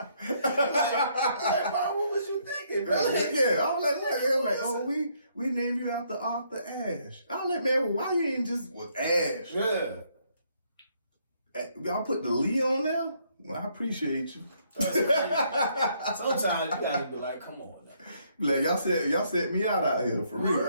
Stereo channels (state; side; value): inverted; both; correlation -0.70